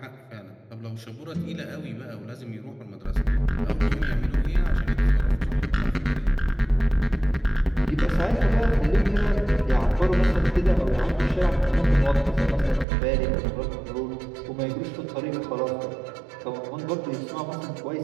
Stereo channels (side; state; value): left; drops out; at 12.9 s